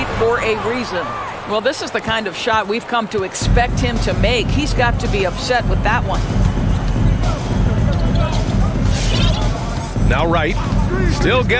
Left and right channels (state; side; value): identical; both; correlation 1.00